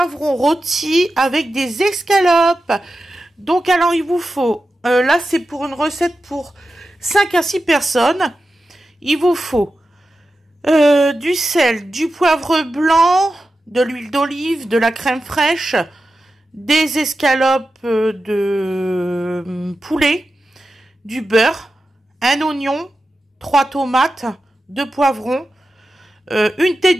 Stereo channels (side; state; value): both; normal; correlation 0.92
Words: rôti avec des escalopes. Donc alors il vous faut, là c'est pour une recette pour 5 à 6 personnes. Il vous faut du sel, du poivre blanc, de l'huile d'olive, de la crème fraîche, des escalopes de poulet, du beurre, un oignon, 3 tomates, 2 poivrons, une